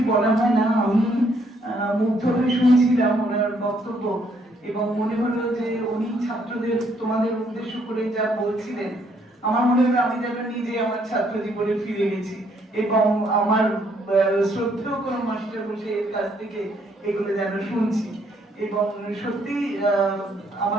বলা হয় না। আমি মুগ্ধ হয়ে শুনছিলাম ওনার বক্তব্য এবং মনে হলো যে উনি ছাত্রদের তোমাদের উদ্দেশ্য করে যা বলছিলেন, আমার মনে হলো আমি যেন নিজে আমার ছাত্র জীবনে ফিরে গেছি এবং আমার শ্রদ্ধেয় কোনো মাস্টার বসে এর কাছ থেকে এগুলো যেন শুনছি। এবং সত্যি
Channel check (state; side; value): normal; both; correlation 0.69